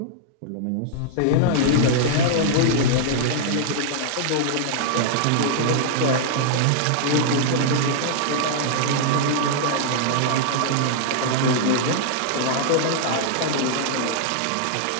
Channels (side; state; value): both; different; correlation -0.01